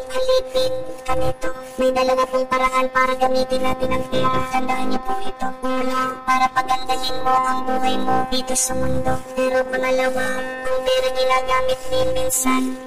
alipin ka nito. May dalawa pong paraan para gamitin natin ang pera. Tandaan niyo po ito. Una, para pagandahin mo ang buhay mo dito sa mundo. Pero pangalawa, ang pera ginagamit din minsan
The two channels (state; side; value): identical; both; correlation 1.00